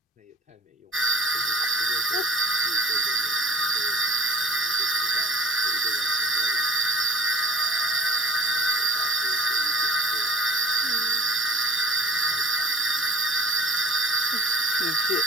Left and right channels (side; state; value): both; normal; correlation 0.46